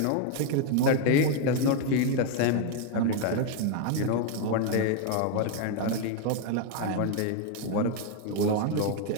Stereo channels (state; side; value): different; both; correlation 0.01